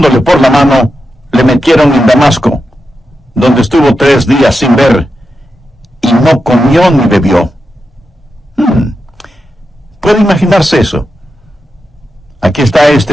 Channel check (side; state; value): both; normal; correlation 0.88